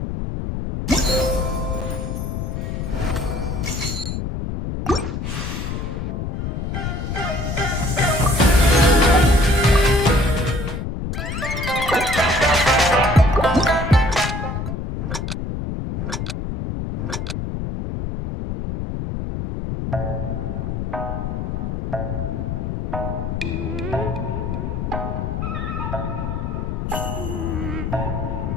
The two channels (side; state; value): left; noise; rumble, 3 dB below the sound